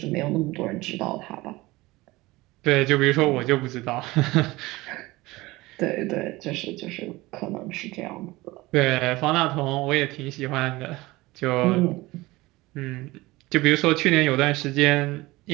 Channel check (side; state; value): left; quieter; 20.3 dB